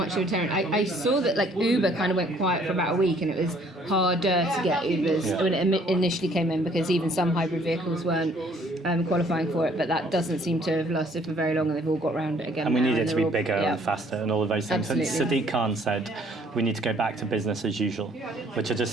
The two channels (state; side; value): normal; both; correlation 0.61